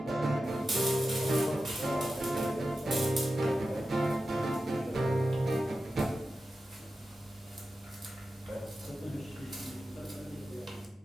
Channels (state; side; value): normal; both; correlation 0.92